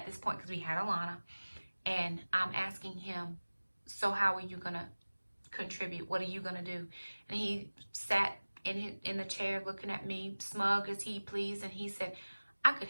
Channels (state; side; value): inverted; both; correlation -1.00